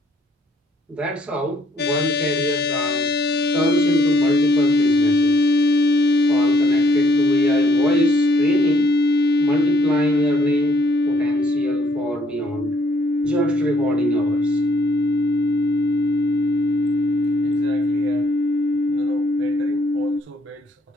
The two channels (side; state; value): both; normal; correlation 0.67